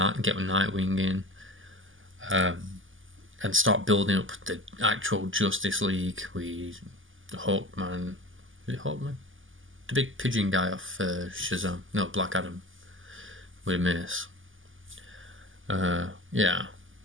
get Nightwing in, and start building up the actual Justice League with Hawkman. Is it Hawkman? The big pigeon guy off Shazam. No, Black Adam with a mace. Yeah.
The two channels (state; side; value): late; left; 0.58 ms